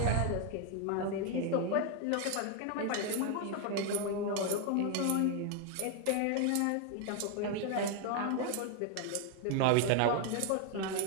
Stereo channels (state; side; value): different; both; correlation 0.01